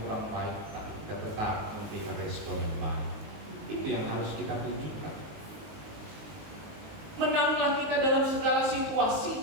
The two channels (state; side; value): late; left; 19 ms